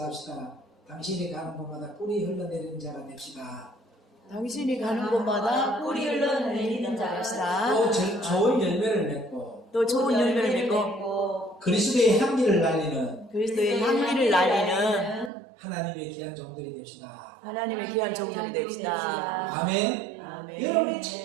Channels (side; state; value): left; drops out; at 15.3 s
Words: 당신이 가는 곳마다 꿀이 흘러내리는 자가 됩시다. 당신이 가는 곳마다 꿀이 흘러내리는 자였다. 또 좋은 열매를 맺고 또 좋은 열매를 맺고 그리스도의 향기를 날리는 그리스도의 향기를 날리는 하나님의 귀한 종들이 됩시다. 하나님의 귀한 종들이 됩시다. 아멘. 아멘. 여러분이